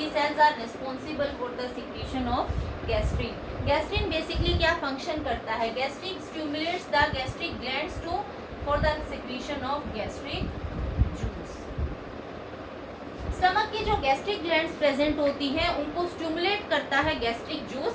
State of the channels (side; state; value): both; identical; correlation 1.00